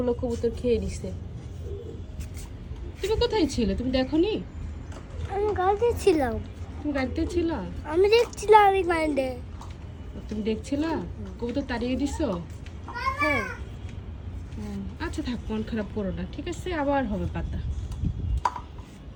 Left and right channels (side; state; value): both; identical; correlation 1.00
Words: কবুতর খেয়ে নিছে। তুমি কোথায় ছিলে? তুমি দেখোনি? আমি গাড়িতে ছিলাম, তুমি গাড়িতে ছিলা? আমি দেখছিলাম আমি গাড়িতে। তুমি দেখছিলা কবুতর তাড়িয়ে দিছো? হ্যাঁ, আচ্ছা থাক, মন খারাপ করো না, ঠিক আছে, আবার হবে পাতা।